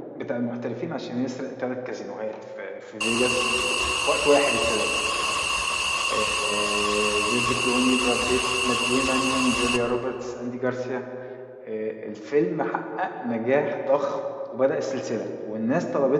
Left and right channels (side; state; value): both; identical; correlation 1.00